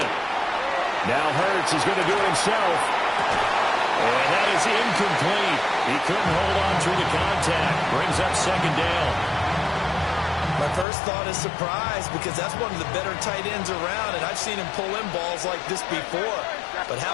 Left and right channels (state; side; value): drops out; right; at 10.9 s